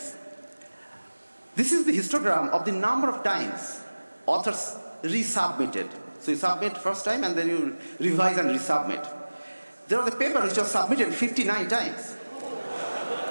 This is the histogram of the number of times authors resubmitted. So you submit first time and then you revise and resubmit. There was a paper which was submitted 59 times.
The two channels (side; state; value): both; inverted; correlation -1.00